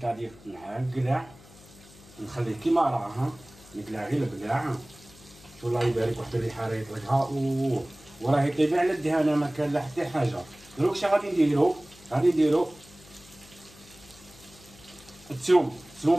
نقلع نخليه كيما راه نقلع غير البقلاع. والله يبارك واحد الريحه راه يطلقها وراه يطيب على الدهانه ما كان لا حتى حاجه. دروك اش غادي نديرو؟ غادي نديرو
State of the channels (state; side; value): noise; left; hum, 23 dB below the sound